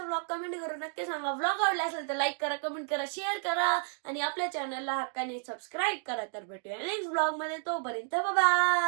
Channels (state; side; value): silent; left; 57 dB below the other